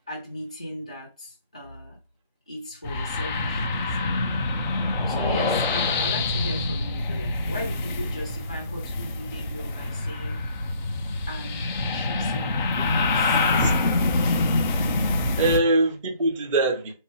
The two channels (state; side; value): inverted; both; correlation -0.60